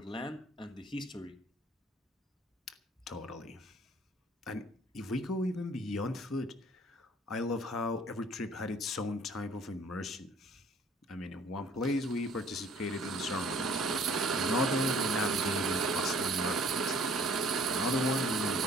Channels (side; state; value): both; normal; correlation 0.55